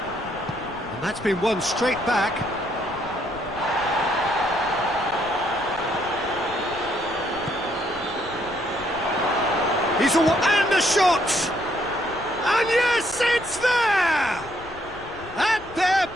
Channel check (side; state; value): left; noise; rumble, 18 dB below the sound